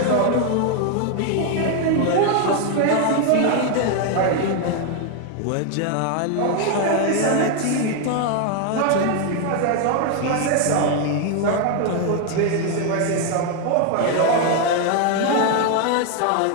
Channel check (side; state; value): both; different; correlation 0.01